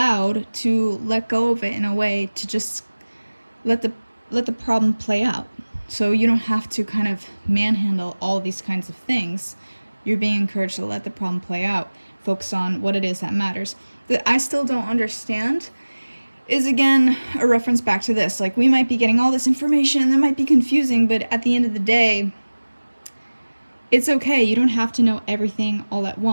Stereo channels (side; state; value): both; inverted; correlation -1.00